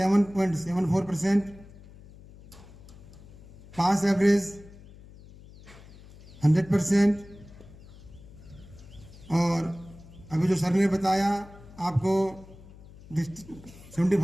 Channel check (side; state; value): left; noise; hum, 20 dB below the sound